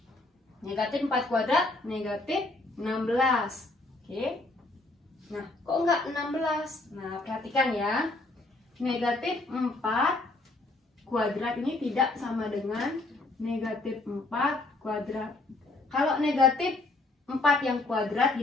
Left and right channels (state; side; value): quieter; right; 3.0 dB